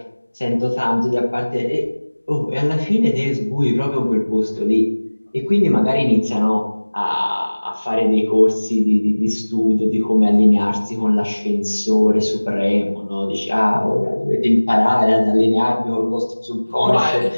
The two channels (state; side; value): inverted; both; correlation -1.00